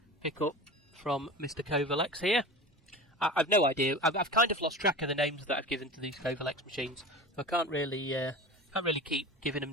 pickup from Mr. Covalex here. I've no idea. I've kind of lost track of the names that I've given to these Covalex machines. So I can't really keep giving them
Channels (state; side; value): normal; both; correlation 0.33